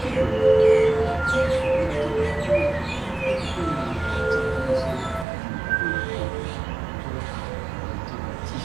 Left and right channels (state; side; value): drops out; left; at 5.2 s